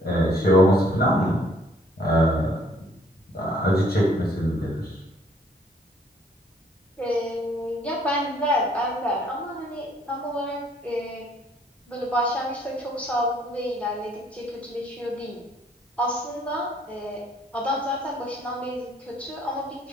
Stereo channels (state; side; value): normal; both; correlation 0.62